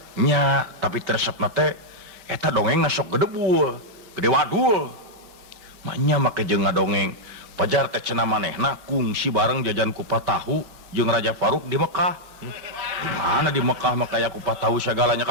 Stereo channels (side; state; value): left; late; 5.2 ms